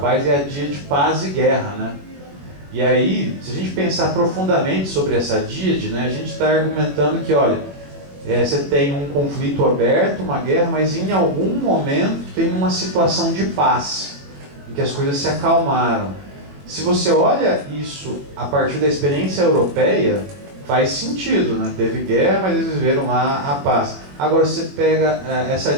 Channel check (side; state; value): left; late; 21 ms